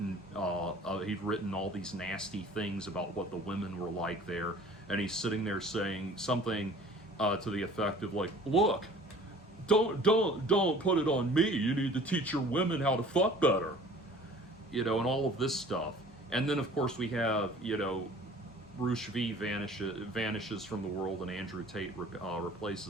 he'd written all these nasty things about what the women were like there, and he's sitting there saying something to the effect of like, "Look, don't put it on me. You need to teach your women how to fuck better," and all of this stuff. And then of course we have Roosh V vanishes from the world, and Andrew Tate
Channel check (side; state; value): both; normal; correlation 0.48